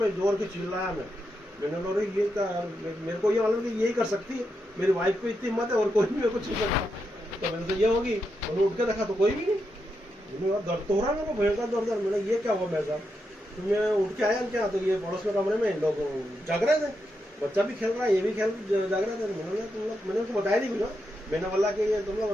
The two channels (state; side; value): normal; both; correlation 0.84